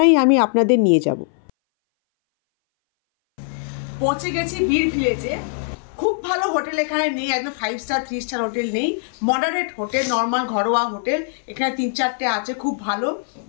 আমি আপনাদের নিয়ে যাব। পৌঁছে গেছি বীর ভিলেজে। খুব ভালো হোটেল এখানে নেই, একদম 5 স্টার 3 স্টার হোটেল নেই, মডারেট হোটেল, নর্মাল ঘরোয়া হোটেল এখানে 3-4টে আছে, খুব ভালো।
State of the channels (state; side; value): silent; right; 60 dB below the other